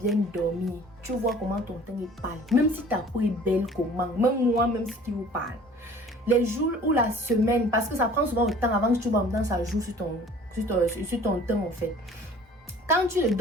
dormi, tu vois comment ton teint est pâle. Même si ta peau est belle comment, même moi, même si tu vous parle. Les jours ou la semaine, parce que ça prend souvent le temps avant que tu vois maintenant ça joue sur ton teint en fait. Quand tu ne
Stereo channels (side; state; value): both; normal; correlation 0.49